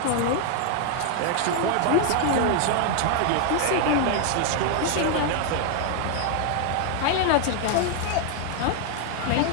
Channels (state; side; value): different; both; correlation 0.00